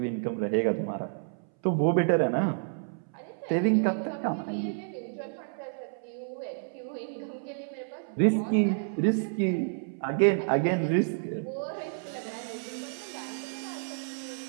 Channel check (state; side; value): silent; left; 58 dB below the other